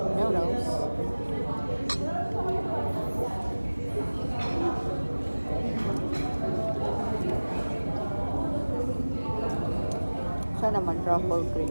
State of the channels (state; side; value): inverted; both; correlation -1.00